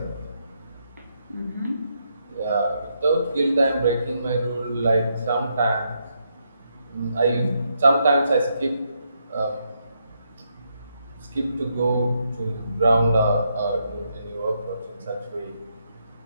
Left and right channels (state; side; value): inverted; both; correlation -0.79